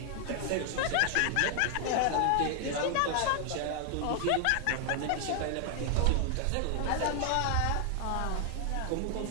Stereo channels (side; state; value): both; different; correlation 0.00